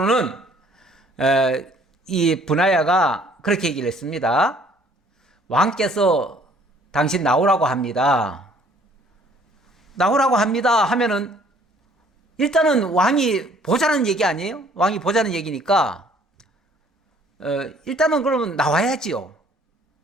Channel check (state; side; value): normal; both; correlation 0.58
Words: 이 브나야가 그렇게 얘기를 했습니다. 왕께서 당신 나오라고 합니다. 나오라고 합니다 하면은 일단은 왕이 보자는 얘기 아니에요? 왕이 보자는 얘기니까 일단은 그러면 나와야지요.